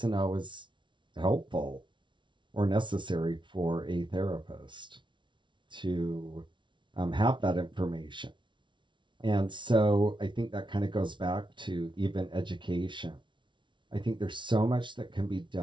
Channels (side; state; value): left; late; 0.24 ms